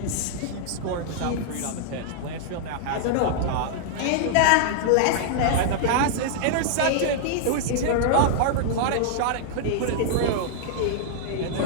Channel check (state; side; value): different; both; correlation -0.01